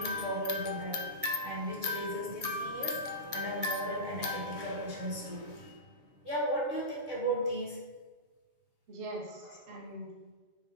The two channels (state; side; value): late; left; 7.2 ms